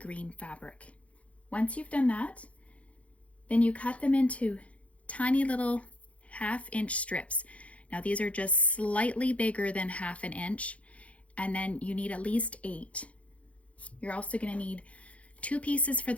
fabric. Once you've done that, then you cut them into tiny little 1/2 inch strips. Now these are just slightly bigger than 1/2 inch, and then you need at least 8. You're also going to need 2 pieces for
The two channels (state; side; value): late; right; 0.064 ms